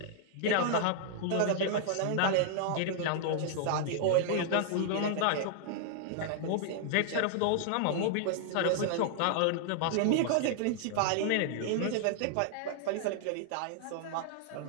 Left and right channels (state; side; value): different; both; correlation -0.01